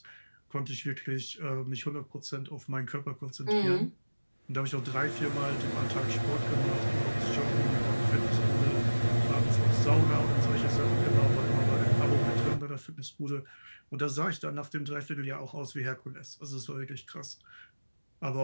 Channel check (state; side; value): inverted; both; correlation -1.00